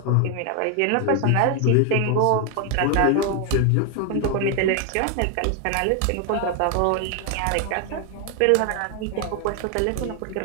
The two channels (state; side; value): different; both; correlation 0.01